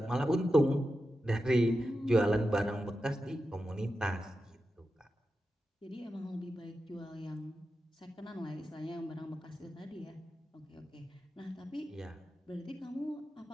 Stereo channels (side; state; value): both; normal; correlation 0.91